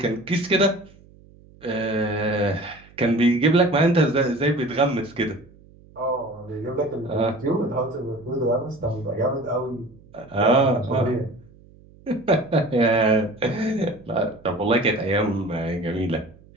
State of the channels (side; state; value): right; noise; hum, 25 dB below the sound